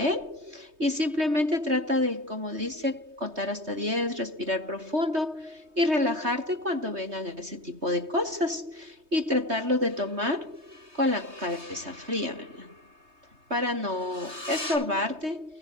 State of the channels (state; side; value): late; left; 3.2 ms